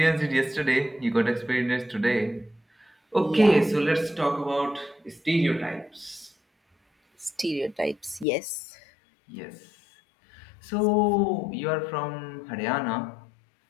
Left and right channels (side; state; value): right; drops out; at 8.2 s